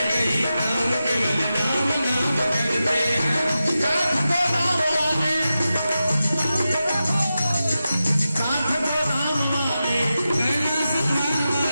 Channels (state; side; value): inverted; both; correlation -0.92